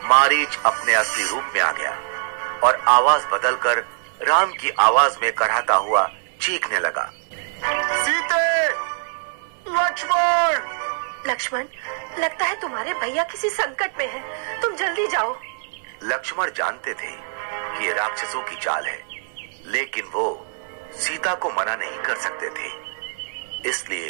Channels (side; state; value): left; silent; digital silence